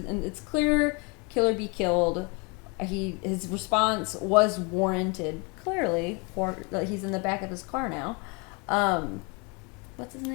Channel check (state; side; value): quieter; right; 31.1 dB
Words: clear kill or be killed. His response was warranted clearly. He's in the back of his car now. What's his